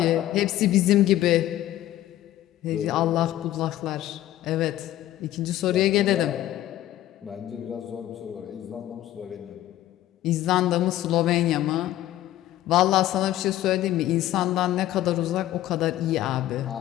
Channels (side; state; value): right; quieter; 13.8 dB